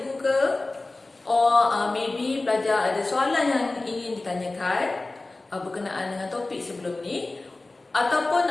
ke, or maybe pelajar ada soalan yang ingin ditanyakan berkenaan dengan topik sebelum ni, ataupun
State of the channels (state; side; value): quieter; right; 3.1 dB